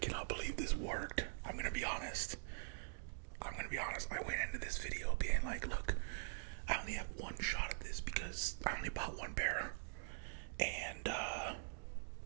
believe this worked. I'm gonna be honest. I went into this video being like, look, I only have one shot at this because I only bought one pair. And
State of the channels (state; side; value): silent; left; digital silence